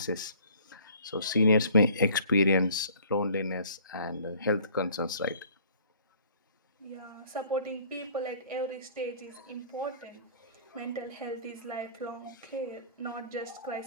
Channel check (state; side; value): inverted; both; correlation -0.53